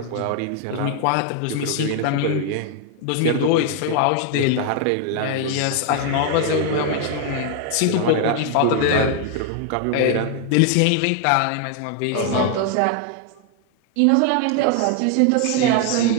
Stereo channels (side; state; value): both; different; correlation 0.00